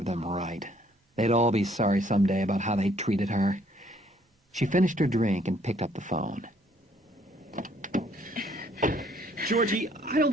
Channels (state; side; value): normal; both; correlation 0.64